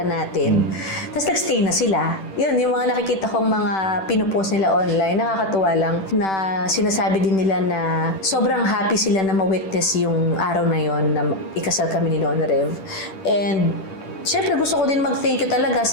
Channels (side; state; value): right; late; 10 ms